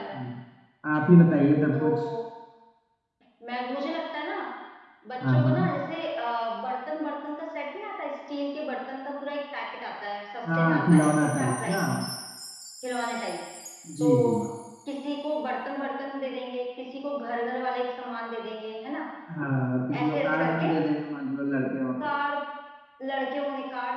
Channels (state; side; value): identical; both; correlation 1.00